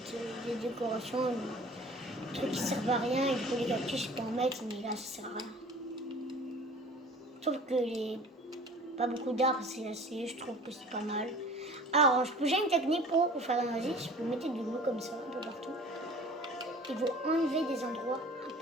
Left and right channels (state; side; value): normal; both; correlation 0.45